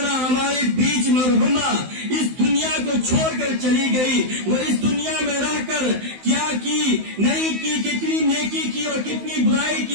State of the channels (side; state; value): left; late; 16 ms